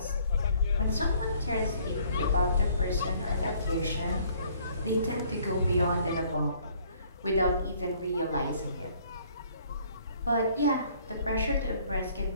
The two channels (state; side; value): inverted; both; correlation -0.60